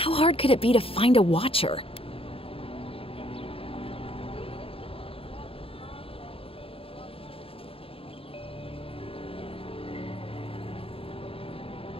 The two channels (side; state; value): right; late; 0.27 ms